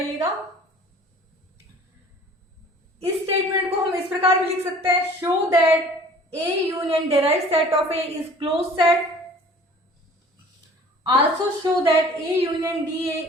इस स्टेटमेंट को हम इस प्रकार भी लिख सकते हैं, show that A union derived set of A is close set. Also show that A union DA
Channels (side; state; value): both; normal; correlation 0.48